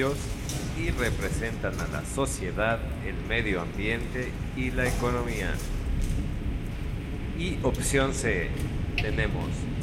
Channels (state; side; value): identical; both; correlation 1.00